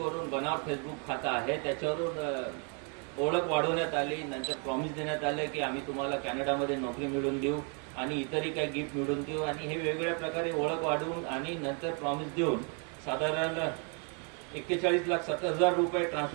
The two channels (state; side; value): quieter; left; 38.5 dB